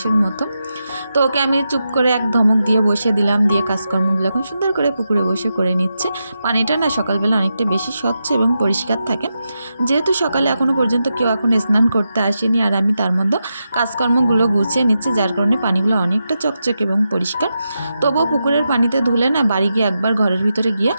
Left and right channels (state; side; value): inverted; both; correlation -0.88